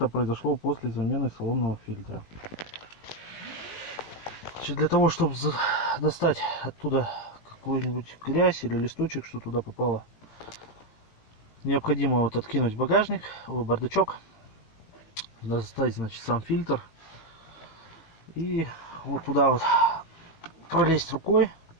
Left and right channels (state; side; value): late; right; 18 ms